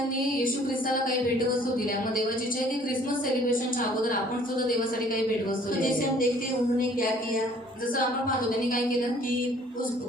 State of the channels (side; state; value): both; normal; correlation 0.56